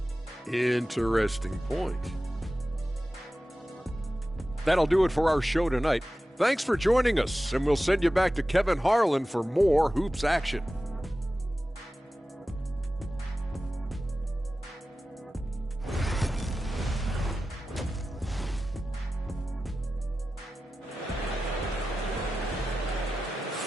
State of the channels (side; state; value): both; normal; correlation 0.94